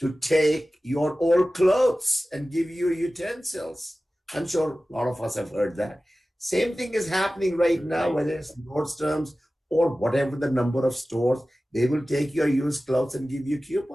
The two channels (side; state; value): both; normal; correlation 0.96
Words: take your old clothes and give you utensils. I'm sure a lot of us have heard that. Same thing is happening right now, whether it's Nordstrom's or whatever the number of stores, they will take your used clothes and give you